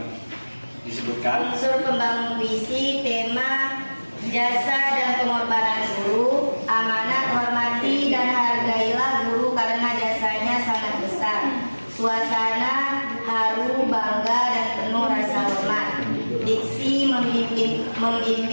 disebutkan. Unsur pembangun puisi, tema, jasa dan pengorbanan guru, amanat, hormati dan hargailah guru karena jasanya sangat besar. Suasana haru, bangga dan penuh rasa hormat. Diksi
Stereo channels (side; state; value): both; inverted; correlation -1.00